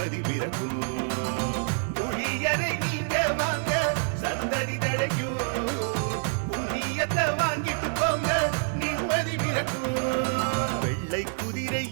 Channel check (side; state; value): left; silent; 60 dB below the other